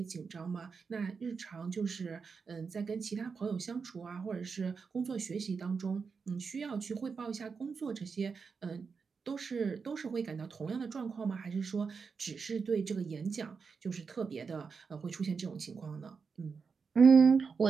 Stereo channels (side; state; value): left; quieter; 5.3 dB